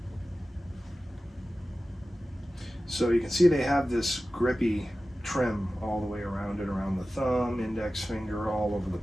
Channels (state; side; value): normal; both; correlation 0.95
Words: So you can see they have this grippy trim all the way around it, around the thumb, index finger, all over the